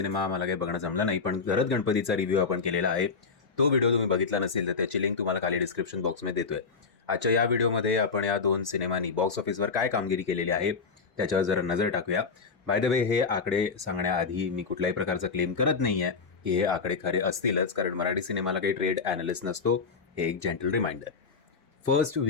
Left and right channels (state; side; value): quieter; right; 5.0 dB